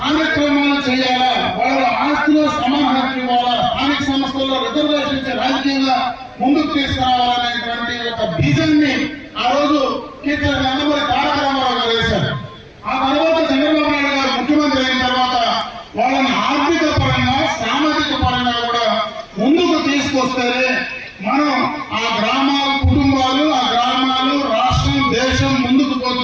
చేయాలా, వాళ్ళ ఆస్తిలో సమాన హక్కు ఇవ్వాలా, స్థానిక సంస్థల్లో రిజర్వేషన్ ఇచ్చే రాజకీయంగా ముందుకు తీసుకురావాలనేటువంటి ఒక బీజాన్ని ఆ రోజు కీర్తి నందమూరి తారక రామారావు గారు వేశారు. ఆ తర్వాత చంద్రబాబు నాయుడు గారు ముఖ్యమంత్రి అయిన తర్వాత వాళ్ళని ఆర్థిక పరంగా, సామాజిక పరంగా కూడా ముందుకు తీసుకొస్తేనే మనం ఆ గ్రామాలు, కుటుంబాలు, ఆ గ్రామాలు, రాష్ట్రం, దేశం ముందుకు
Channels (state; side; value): identical; both; correlation 1.00